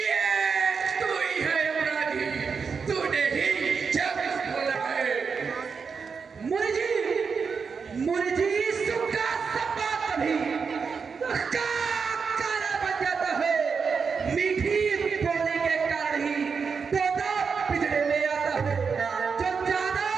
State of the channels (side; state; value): left; quieter; 5.6 dB